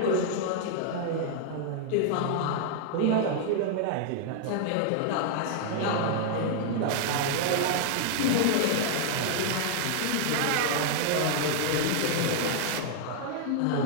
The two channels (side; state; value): both; different; correlation -0.01